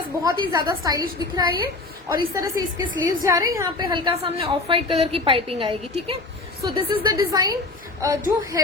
बहुत ही ज्यादा स्टाइलिश दिख रहा है ये. और इस तरह से इसके स्लीव्स जा रहे हैं, यहाँ पे हल्का सामने ऑफ व्हाइट कलर की पाइपिंग आएगी. ठीक है, so this is the design. जो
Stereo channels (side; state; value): right; quieter; 3.3 dB